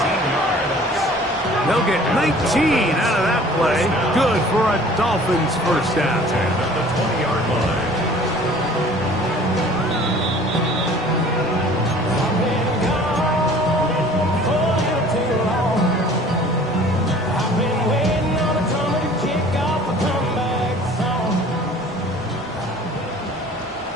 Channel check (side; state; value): both; normal; correlation 0.49